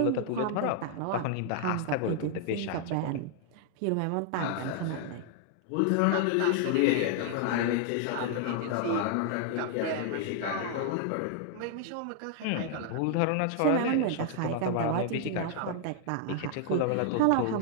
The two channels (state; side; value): different; both; correlation 0.00